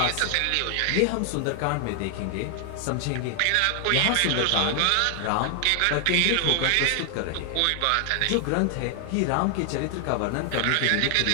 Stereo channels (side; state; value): both; different; correlation 0.00